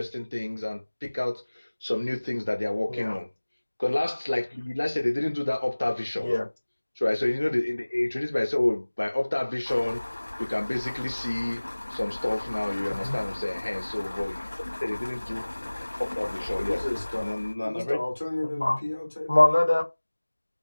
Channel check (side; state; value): both; inverted; correlation -1.00